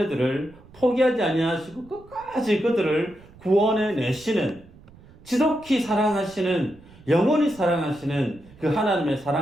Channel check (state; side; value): noise; right; rumble, 24 dB below the sound